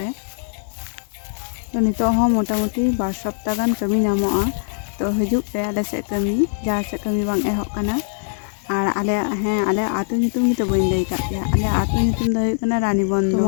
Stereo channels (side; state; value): right; silent; 65 dB below the other